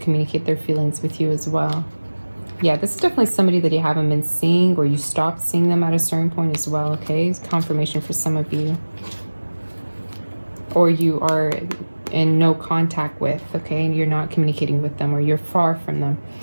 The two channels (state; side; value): inverted; both; correlation -1.00